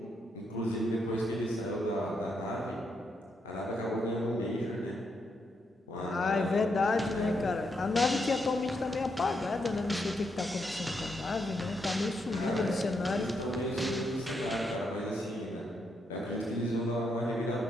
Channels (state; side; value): normal; both; correlation 0.79